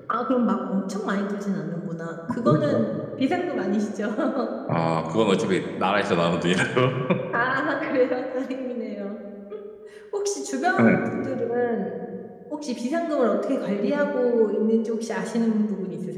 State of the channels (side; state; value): both; identical; correlation 1.00